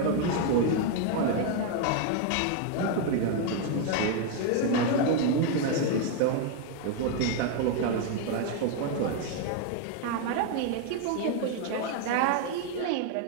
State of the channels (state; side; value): different; both; correlation 0.00